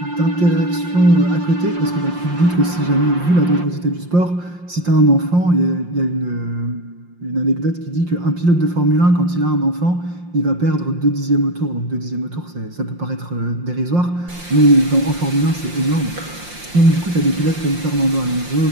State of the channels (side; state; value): left; late; 5.7 ms